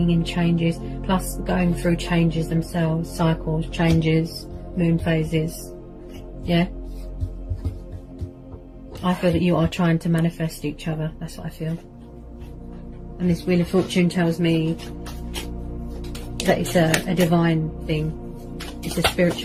in changes, plus going through changes themselves, cycles, changes, moon phases. Yeah? I feel that you are trying to manifest each other. That's what I feel. And this Wheel of Fortune tells me that it's a divine thing. It's a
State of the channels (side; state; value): both; identical; correlation 1.00